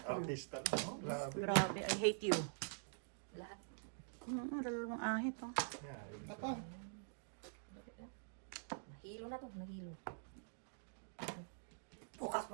Artista. No? Grabe. grabe. I hate you. Lahat. Dalawang ahit oh. Yeah, Ako. Nahilo na to. Nahilo. Bukas pa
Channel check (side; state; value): left; silent; digital silence